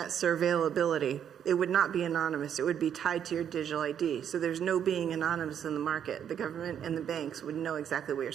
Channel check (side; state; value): left; quieter; 8.9 dB